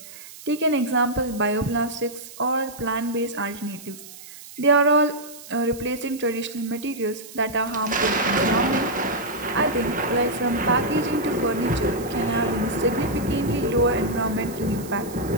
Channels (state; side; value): noise; right; hiss, 16 dB below the sound